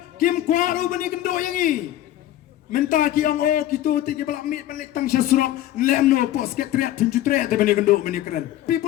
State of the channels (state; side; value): quieter; right; 13.2 dB